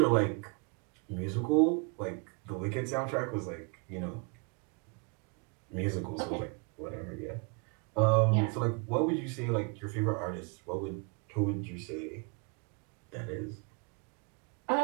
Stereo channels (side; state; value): left; quieter; 34.3 dB